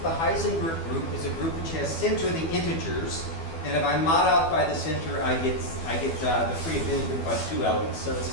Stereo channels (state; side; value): late; right; 12 ms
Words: The Heisenberg group is a group which has center the integers. And if I mod out by the center, I get the free abelian group by 2 elements. So it's a